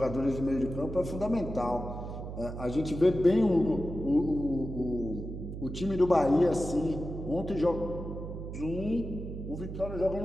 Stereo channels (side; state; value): right; noise; hum, 8 dB below the sound